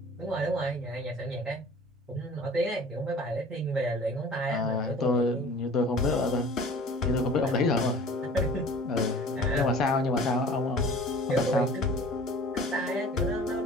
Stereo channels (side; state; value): both; normal; correlation 0.45